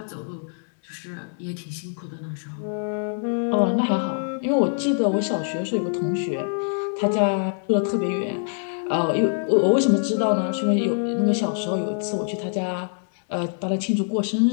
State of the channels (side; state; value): right; silent; 62 dB below the other